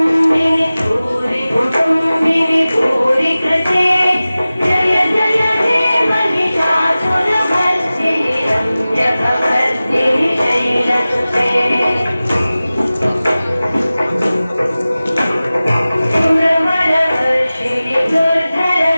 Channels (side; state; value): both; inverted; correlation -0.97